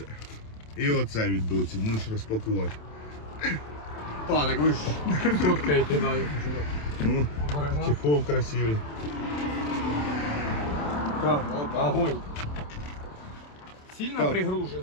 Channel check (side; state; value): right; late; 27 ms